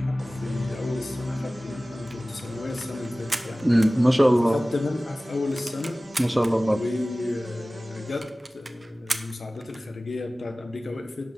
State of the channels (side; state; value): both; normal; correlation 0.97